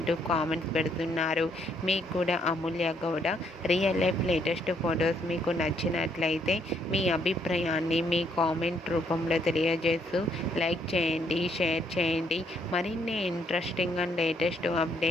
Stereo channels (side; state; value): both; normal; correlation 0.71